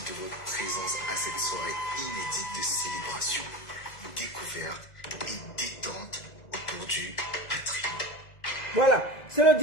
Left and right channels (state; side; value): late; right; 2.0 ms